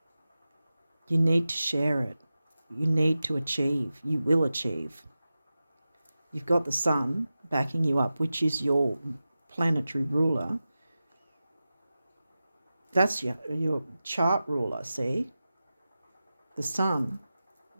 You need to share it. You need to achieve. You will achieve. You've got the sun backing you up, which is your planetary ruler. That's your chart ruler, see? The sun,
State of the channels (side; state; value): both; inverted; correlation -0.94